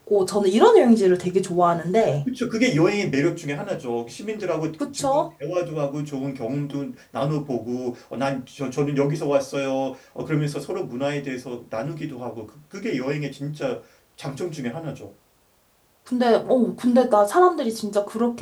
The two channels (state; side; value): identical; both; correlation 1.00